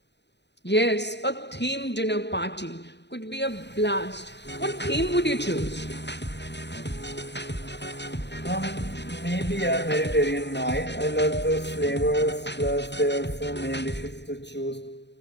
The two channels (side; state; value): right; late; 0.50 ms